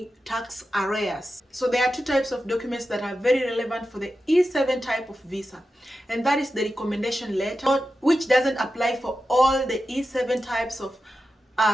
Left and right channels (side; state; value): both; normal; correlation 0.91